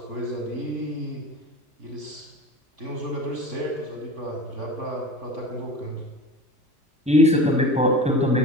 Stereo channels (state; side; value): normal; both; correlation 0.33